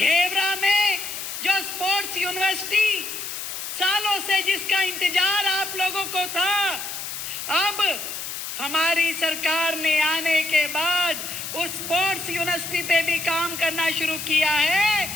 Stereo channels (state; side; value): noise; left; hiss, 7 dB below the sound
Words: में जो स्पोर्ट्स यूनिवर्सिटी सालों से जिसका इंतजार आप लोगों को था, अब हमारी सरकार ने आने के बाद उस स्पोर्ट्स यूनिवर्सिटी पे भी काम करना शुरू किया है,